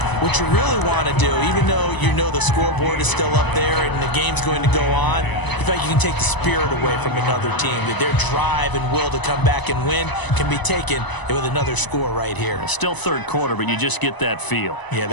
what you really want to do, even though you know the scoreboard is still up there and the game's going to go on, you feel like you can take the spirit away from another team, that their drive and will to come back and win can be taken with another score right here. Still 3rd quarter, but you just get that feel. Yeah,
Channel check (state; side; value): late; right; 1.0 ms